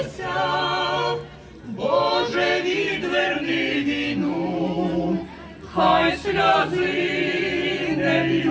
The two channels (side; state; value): both; identical; correlation 1.00